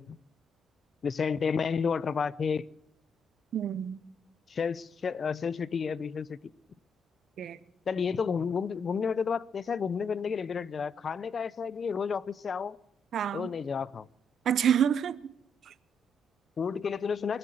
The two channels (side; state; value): both; normal; correlation 0.76